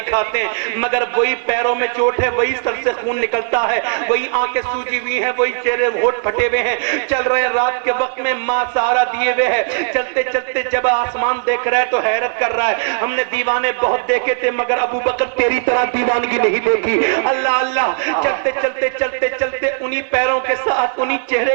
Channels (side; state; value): left; silent; 62 dB below the other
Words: کھاتے ہیں، مگر وہی پیروں میں چوٹ ہے، وہی سر سے خون نکلتا ہے، وہی آنکھیں سوجی ہوئی ہیں، وہی چہرے ہونٹ پھٹے ہوئے ہیں، چل رہے ہیں رات کے وقت میں، ماں سہارا دیے ہوئے ہے، چلتے چلتے جب آسمان دیکھ رہا ہے تو حیرت کر رہا ہے، ہم نے دیوانے بہت دیکھے تھے مگر ابو بکر تیری طرح دیوانگی نہیں دیکھی۔ اللہ اللہ، چلتے چلتے چلتے چلتے انہی پیروں کے ساتھ، انہی چہرے